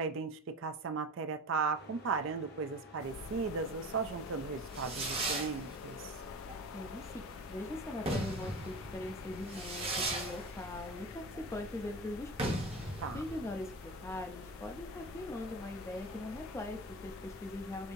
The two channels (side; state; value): both; normal; correlation 0.32